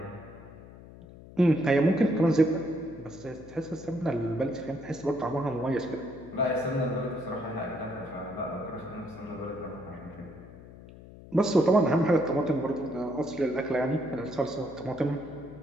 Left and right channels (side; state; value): left; noise; hum, 18 dB below the sound